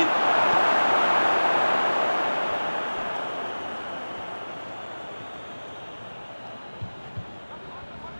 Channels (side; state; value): both; inverted; correlation -1.00